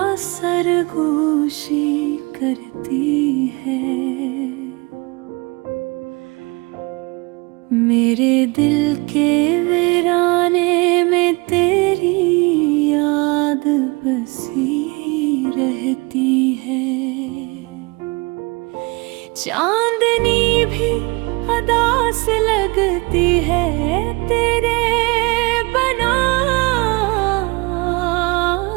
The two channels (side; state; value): left; quieter; 27.0 dB